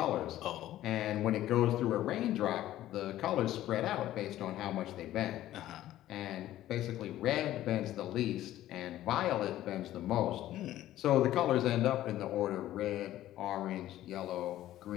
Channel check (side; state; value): right; quieter; 13.8 dB